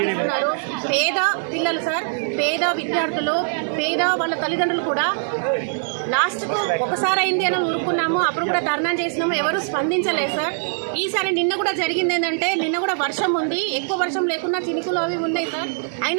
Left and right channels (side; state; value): left; silent; 64 dB below the other